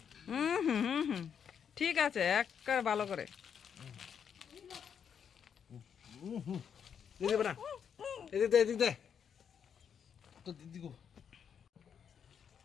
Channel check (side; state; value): right; quieter; 7.6 dB